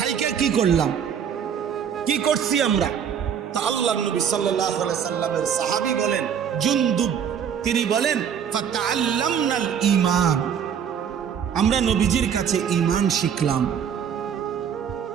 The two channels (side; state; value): left; quieter; 8.0 dB